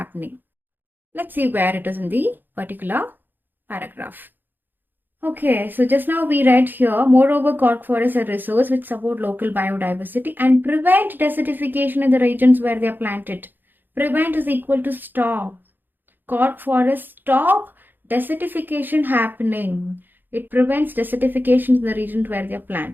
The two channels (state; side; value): late; left; 0.092 ms